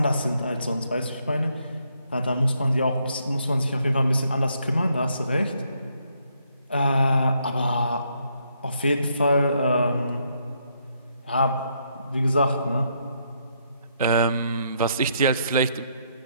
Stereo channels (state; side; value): inverted; both; correlation -0.74